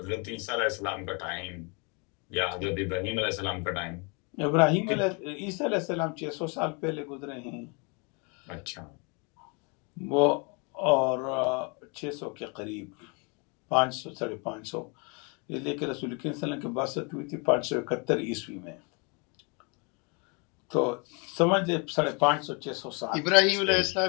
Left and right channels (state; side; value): quieter; right; 32.6 dB